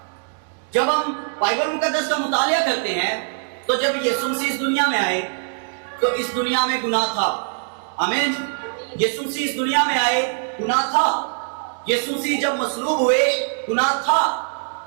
جب ہم بائبل مقدس کا مطالعہ کرتے ہیں تو جب یسوع مسیح اس دنیا میں آئے تو اس دنیا میں گناہ تھا، آمین۔ یسوع مسیح اس دنیا میں آئے گناہ تھا۔ یسوع مسیح جب مصلوب ہوئے گناہ تھا۔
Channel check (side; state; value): left; silent; digital silence